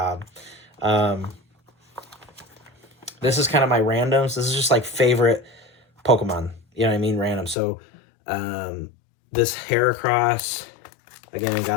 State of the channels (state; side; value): drops out; right; at 7.6 s